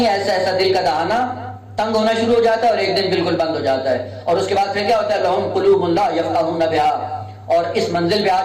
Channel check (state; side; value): identical; both; correlation 1.00